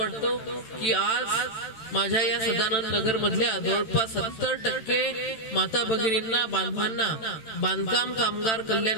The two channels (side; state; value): right; late; 13 ms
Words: की आज माझ्या या सदानंद नगर मधल्या जवळपास 70% माता भगिनींना, बांधवांना बांधकाम कामगार